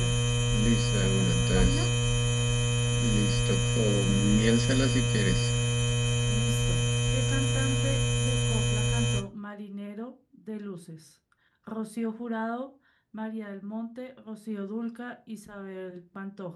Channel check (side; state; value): both; identical; correlation 1.00